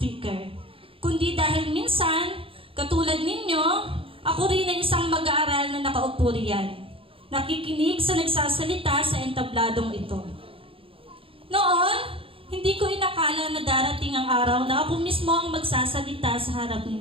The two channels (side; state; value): left; late; 0.26 ms